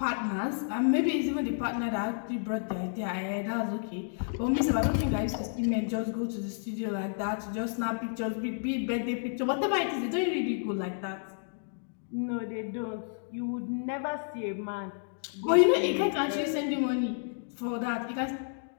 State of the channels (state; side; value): silent; right; digital silence